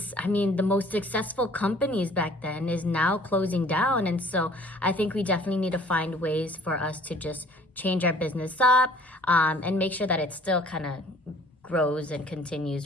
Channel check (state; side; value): normal; both; correlation 0.54